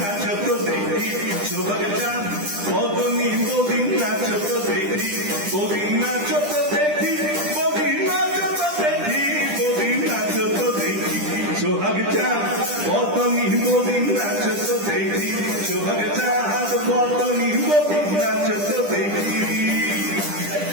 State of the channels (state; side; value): late; left; 10 ms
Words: দেখি, সোহাগ চাঁদ বদনী বদিন নাচত দেখি, বদিন নাচত দেখি, বদিন নাচত দেখি, বদিন নাচত দেখি। সোহাগ চাঁদ বদনী বদিন নাচত দেখি, সোহাগ চাঁদ বদনী বদিন নাচত দেখি।